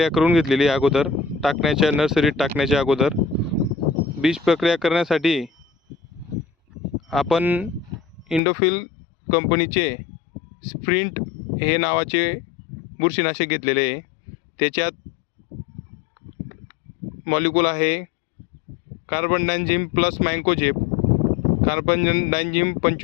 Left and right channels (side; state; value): right; drops out; at 8.4 s